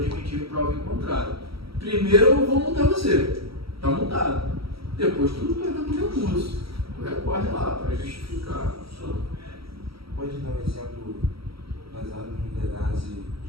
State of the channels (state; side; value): late; left; 0.75 ms